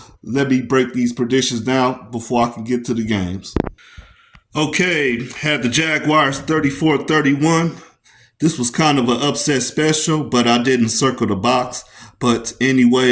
Let me break these predictions down before I can get to the games. Okay, had the Jaguars 34-31. This was kind of an upset special, but I didn't circle the box. But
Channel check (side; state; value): both; identical; correlation 1.00